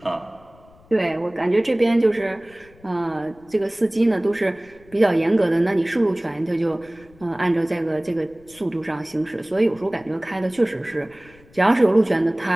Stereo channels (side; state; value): left; noise; rumble, 27 dB below the sound